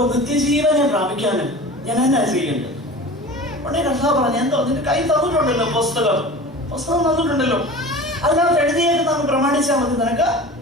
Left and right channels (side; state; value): both; normal; correlation 0.37